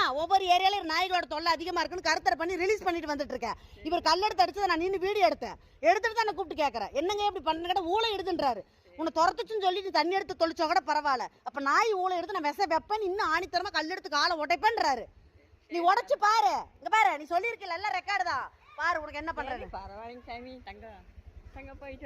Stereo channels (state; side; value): identical; both; correlation 1.00